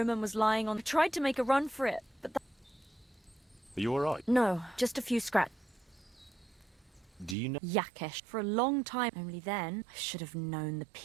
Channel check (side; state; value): left; drops out; at 7.4 s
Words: was lying on... I tried to make a run for it, but... Are you alright? No, just a few scratches. Do you know... Yakesh. For a long time. Only then, I should have known the